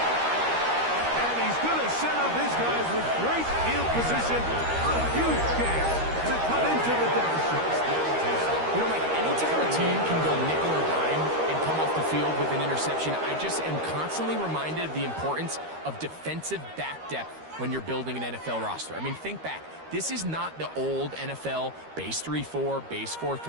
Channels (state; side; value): late; left; 13 ms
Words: And he's going to set up his guys with great field position on a huge chance to cut into the deficit. You know, Mike, anytime a team can go nickel or dime and come off the field with an interception, I just am constantly reminded of the importance of defensive back depth when you're building an NFL roster. I mean, think back. This is not the old NFL base 3-4, base